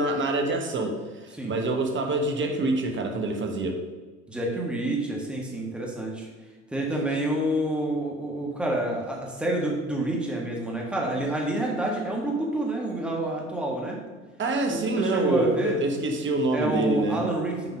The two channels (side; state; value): both; normal; correlation 0.47